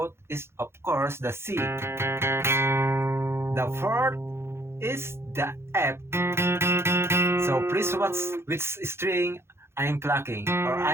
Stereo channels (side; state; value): left; late; 0.12 ms